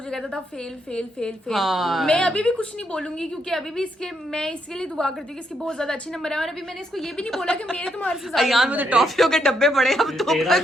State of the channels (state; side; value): normal; both; correlation 0.77